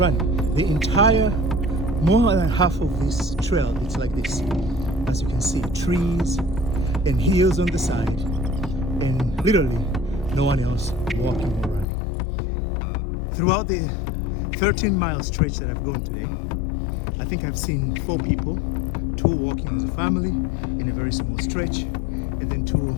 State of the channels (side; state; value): right; drops out; at 11.9 s